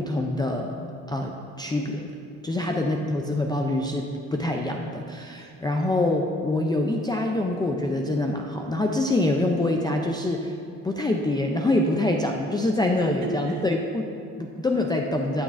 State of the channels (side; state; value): both; normal; correlation 0.65